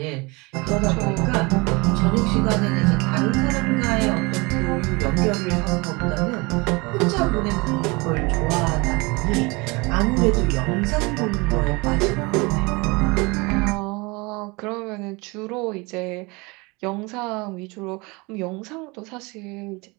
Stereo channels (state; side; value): quieter; left; 26.1 dB